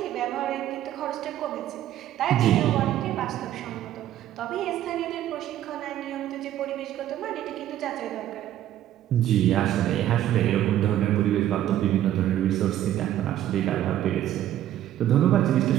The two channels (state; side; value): quieter; left; 12.3 dB